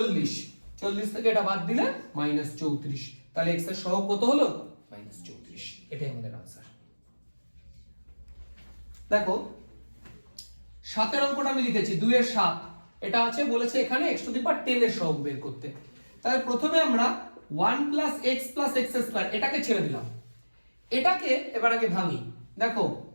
40 থেকে এটা বাদ দিলে -34। তাহলে x এর সহগ কত হলো? -34। এটাই আমাদের आंसर। দেখো 7 এর অঙ্কটা আমি লিখেছি 2 এর 7, এটা আছে বলেছে এখানে x⁻10 এর সহগ বের করতে। তাহলে প্রথমে আমরা 1 + x + x², এটাকে ছেড়ে দিলাম। এটাকে এবার আগে ভাঙি। দেখো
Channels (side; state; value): both; inverted; correlation -1.00